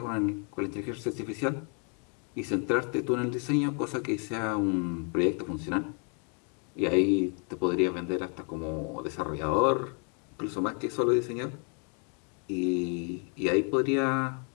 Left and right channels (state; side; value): quieter; right; 39.4 dB